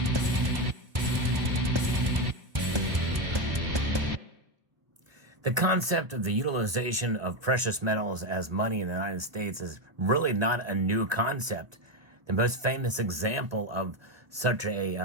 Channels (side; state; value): left; late; 1.2 ms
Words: The concept of the utilization of precious metals as money in the United States is really not a new concept. The most famous example of such